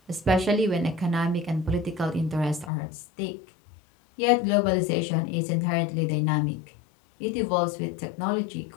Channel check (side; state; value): right; drops out; at 2.7 s